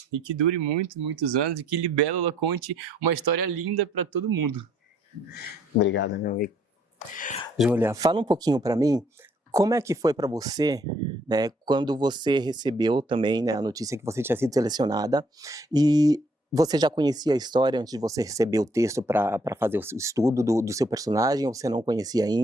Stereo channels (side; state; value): both; normal; correlation 0.65